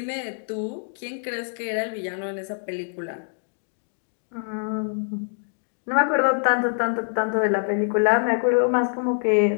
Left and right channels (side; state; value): right; silent; digital silence